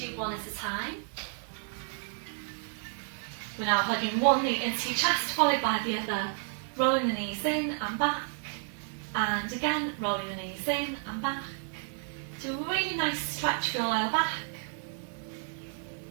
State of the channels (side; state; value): left; silent; 57 dB below the other